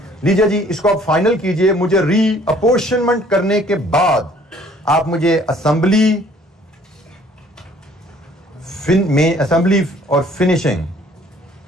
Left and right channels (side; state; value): both; normal; correlation 0.57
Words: लीजिए जी, इसको आप फाइनल कीजिए। मुझे रीअपोर्शनमेंट करने के बाद आप मुझे असेंबली और finishing